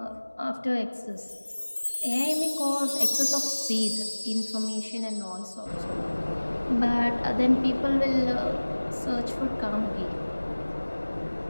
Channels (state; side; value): inverted; both; correlation -1.00